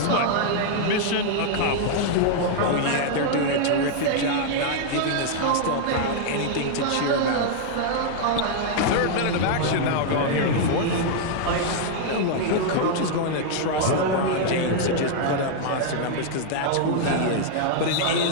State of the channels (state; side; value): different; both; correlation 0.00